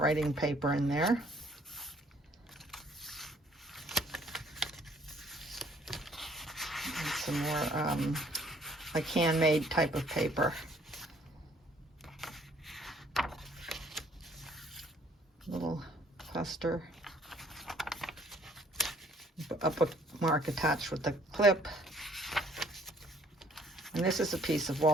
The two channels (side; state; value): both; normal; correlation 0.61